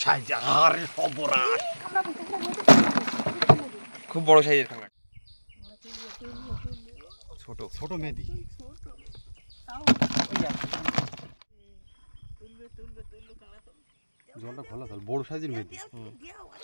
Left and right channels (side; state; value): both; inverted; correlation -1.00